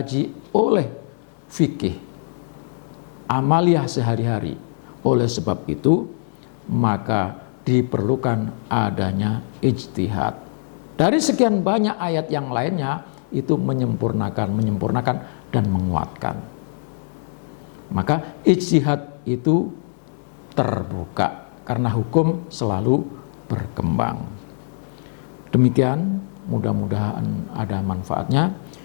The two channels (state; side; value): silent; right; digital silence